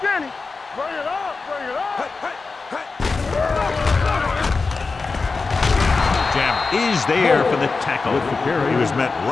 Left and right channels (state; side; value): quieter; right; 4.2 dB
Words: Bring it up. Jammer is there for the tackle. He was met